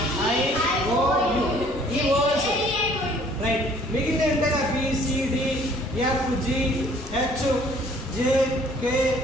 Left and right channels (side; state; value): both; normal; correlation 0.57